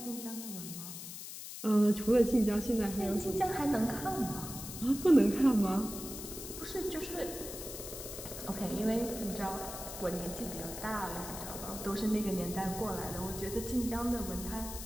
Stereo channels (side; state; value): left; noise; hiss, 9 dB below the sound